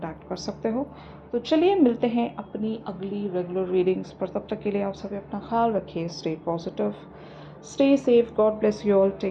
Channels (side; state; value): both; identical; correlation 1.00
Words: कर सकते हो। तो चलिए मिलते हैं अपनी अगली रेगुलर रीडिंग्स पर। तब तक के लिए आप सभी अपना ख्याल रखिए। Stay positive, stay safe, God bless you all,